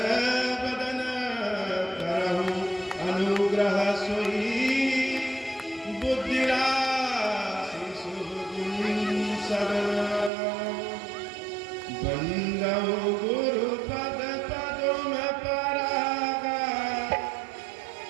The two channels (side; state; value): left; drops out; at 10.3 s